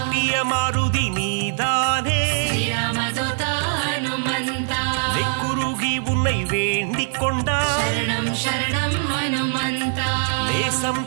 மாருதி நீதானே, ஸ்ரீராமதூதா ஹனுமந்தா. நெக்குருகி உன்னை வேண்டிக் கொண்டார், சரணம் சரணம் ஹனுமந்தா. நேசம்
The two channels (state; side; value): silent; left; digital silence